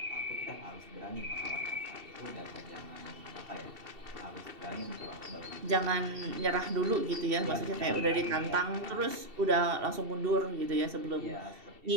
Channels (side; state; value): left; late; 2.7 ms